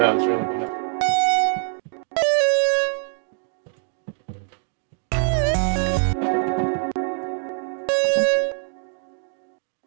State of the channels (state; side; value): silent; left; 57 dB below the other